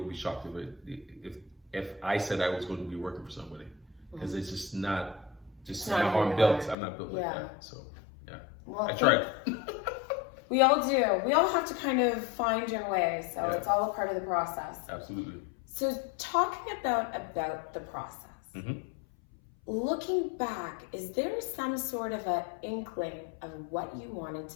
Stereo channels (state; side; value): drops out; right; at 6.8 s